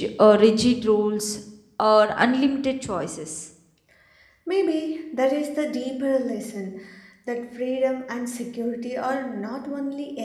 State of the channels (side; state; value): both; identical; correlation 1.00